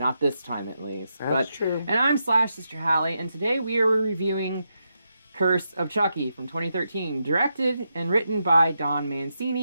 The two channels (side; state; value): both; inverted; correlation -0.84